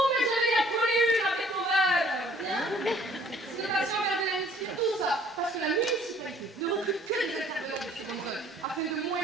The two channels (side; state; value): both; normal; correlation 0.57